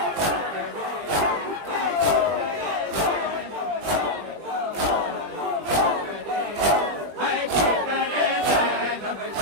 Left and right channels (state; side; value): late; left; 20 ms